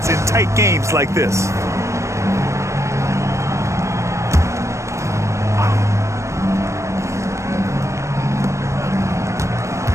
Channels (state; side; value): late; left; 0.14 ms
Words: in tight games like this.